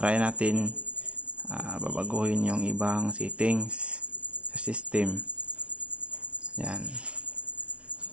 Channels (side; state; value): left; late; 0.061 ms